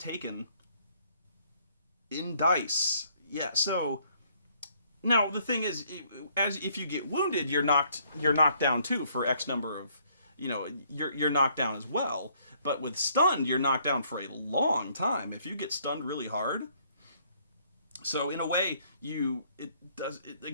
in dice. Yeah, so now the thing is, if you get wounded, you're knocked down too for X number of, you're knocked down as well. But with stunned, you're knocked down for a long time. If you get stunned really hard, so in a way,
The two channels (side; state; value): both; inverted; correlation -0.66